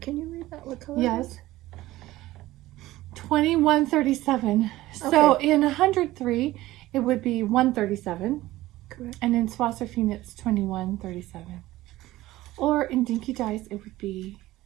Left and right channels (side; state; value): left; quieter; 16.8 dB